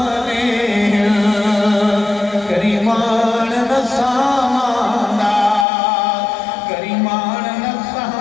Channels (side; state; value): right; drops out; at 5.7 s